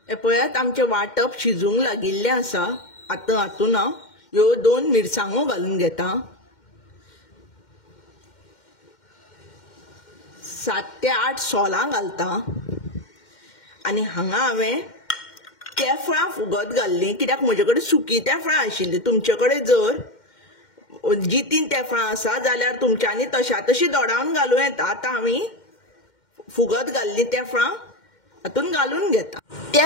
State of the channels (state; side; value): late; right; 2.1 ms